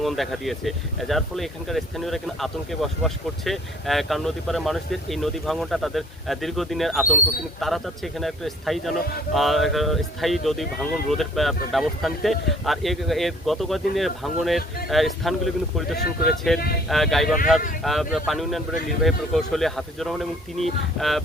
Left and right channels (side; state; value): both; normal; correlation 0.56